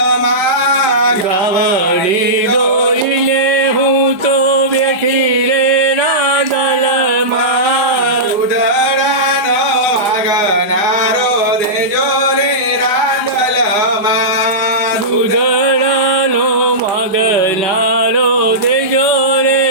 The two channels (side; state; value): left; late; 5.2 ms